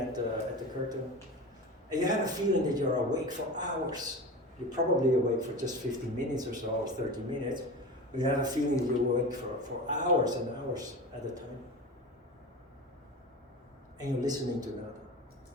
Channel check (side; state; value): both; normal; correlation 0.30